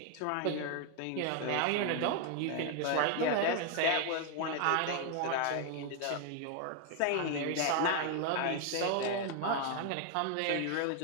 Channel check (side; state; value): both; different; correlation 0.00